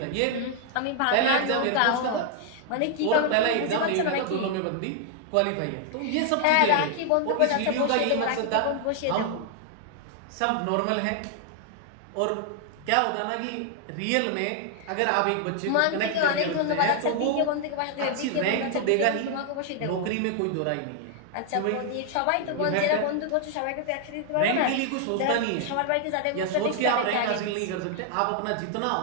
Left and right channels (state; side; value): different; both; correlation 0.00